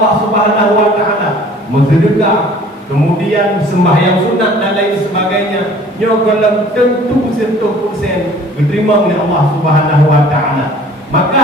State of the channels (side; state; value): both; normal; correlation 0.50